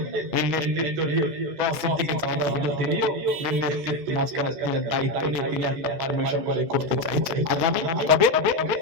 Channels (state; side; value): late; left; 14 ms